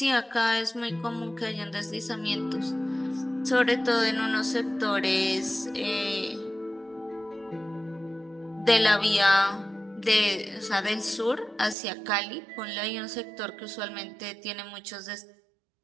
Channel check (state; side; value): drops out; left; at 11.8 s